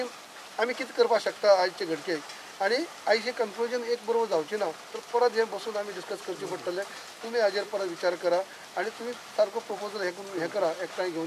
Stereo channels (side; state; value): both; identical; correlation 1.00